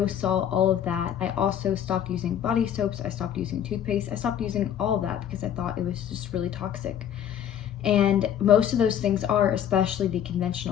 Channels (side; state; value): right; quieter; 9.7 dB